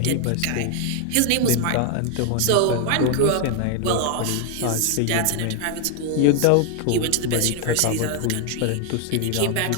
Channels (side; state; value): both; different; correlation 0.00